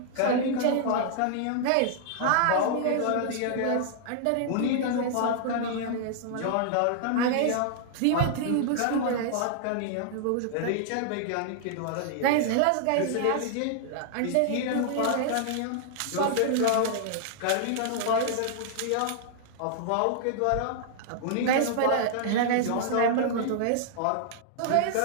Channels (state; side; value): different; both; correlation -0.01